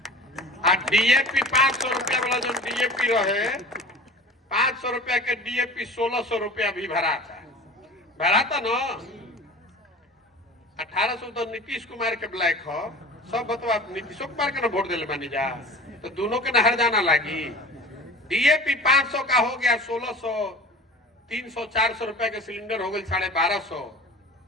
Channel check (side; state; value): both; normal; correlation 0.39